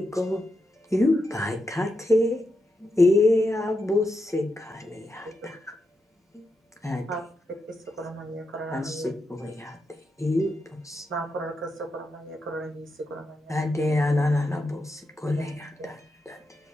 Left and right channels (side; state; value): both; normal; correlation 0.85